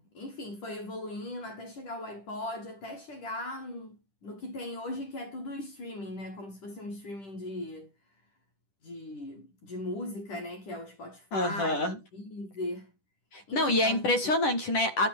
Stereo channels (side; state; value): right; late; 10 ms